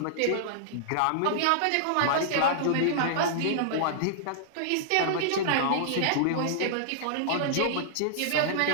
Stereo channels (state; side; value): different; both; correlation -0.01